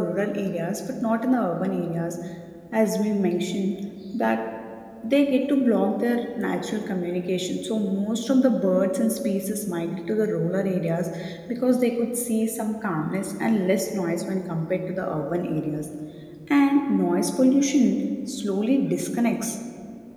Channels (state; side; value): identical; both; correlation 1.00